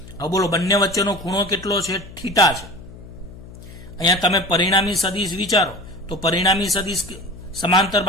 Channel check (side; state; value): left; noise; hum, 17 dB below the sound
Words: હવે બોલો બંને વચ્ચેનો ખૂણો કેટલો છે? થીટા છે. અહીંયા તમે પરિણામી સદિશ વિચારો તો પરિણામી સદિશ સમાંતર